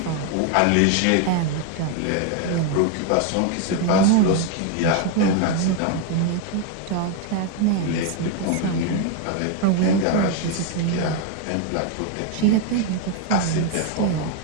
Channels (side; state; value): both; different; correlation 0.01